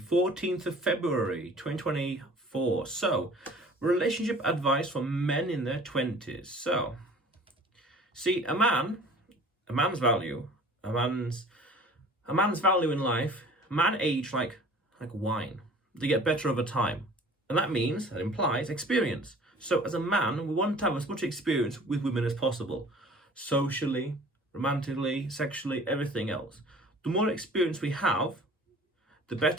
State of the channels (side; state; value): both; normal; correlation 0.48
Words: of February, 2024. So, relationship advice for men in their 20s. So, see, a man's value, a man's a man's value in life, man age like wine. They get better over time. And that implies experience. So as a man, we want to have as much experience with women as possible. Socially, romantically, sexually, everything else. The more experience we have, the